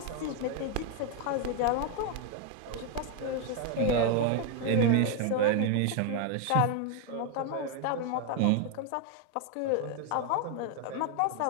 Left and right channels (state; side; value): different; both; correlation 0.01